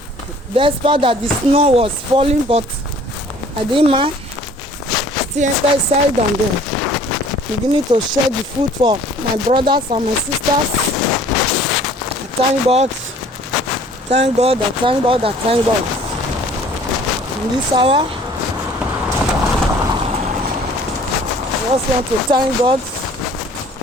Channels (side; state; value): both; normal; correlation 0.53